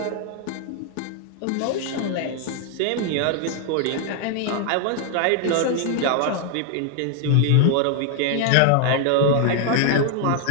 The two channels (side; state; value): both; different; correlation 0.00